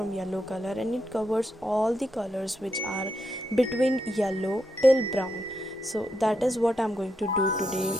yellow color and it covers all the colors which are between yellow till brown. So that is what I'm going to do today.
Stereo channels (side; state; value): both; normal; correlation 0.82